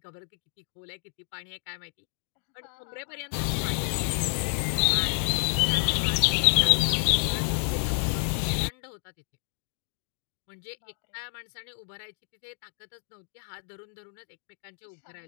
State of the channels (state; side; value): silent; right; 58 dB below the other